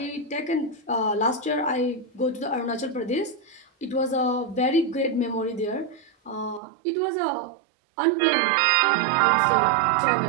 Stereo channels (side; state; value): left; drops out; at 6.6 s